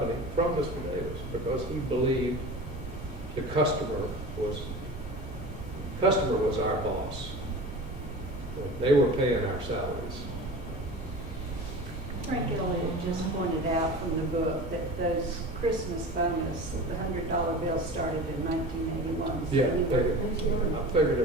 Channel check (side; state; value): both; normal; correlation 0.34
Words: from Mr. Davis, because he believed the customer was our boss. They were paying our salaries. Frank Elliott just pointed out from the book that those Christmas bonus, the $100 bill started in 1981. So Yeah, you were, I figured